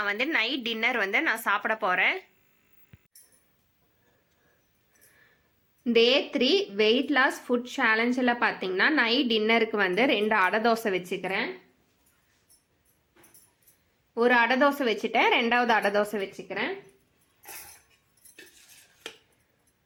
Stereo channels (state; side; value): identical; both; correlation 1.00